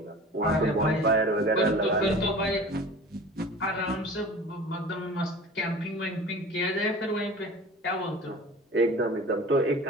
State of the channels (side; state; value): both; normal; correlation 0.40